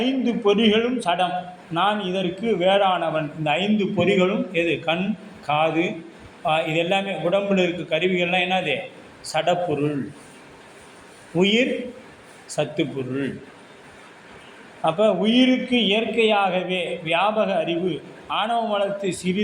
பொறிகளும் சடம், நான் இதற்கு வேறானவன். இந்த 5 பொறிகளும் எது? கண், காது, இது எல்லாமே உடம்பில் இருக்க கருவிகள்லாம் என்னது? சடப்பொருள். உயிர் சத்து பொருள். அப்போ உயிருக்கு இயற்கையாகவே வியாபக அறிவு ஆணவ மலத்தை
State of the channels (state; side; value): identical; both; correlation 1.00